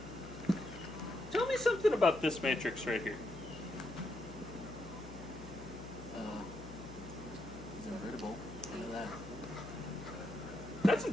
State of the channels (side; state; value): left; noise; hum, 15 dB below the sound